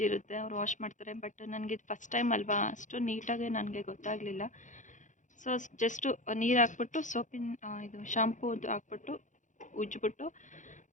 ಇರುತ್ತೆ, ಅವ್ರು ವಾಶ್ ಮಾಡ್ತಾರೆ. ಬಟ್ ನನಗೆ ಇದು ಫಸ್ಟ್ ಟೈಮ್ ಅಲ್ವಾ, ಅಷ್ಟು ನೀಟಾಗಿ ನನಗೆ ಗೊತ್ತಾಗಲಿಲ್ಲ. ಸೊ ಜಸ್ಟು ನೀರು ಹಾಕ್ಬಿಟ್ಟು ಸೋಪಿನ ಇದು ಶಾಂಪೂದು ಹಾಕ್ಬಿಟ್ಟು ಉಜ್ಜಿಬಿಟ್ಟು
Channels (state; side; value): late; right; 0.36 ms